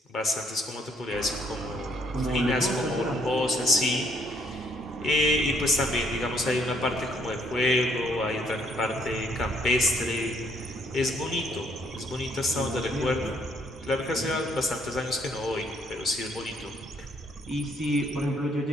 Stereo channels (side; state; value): both; normal; correlation 0.68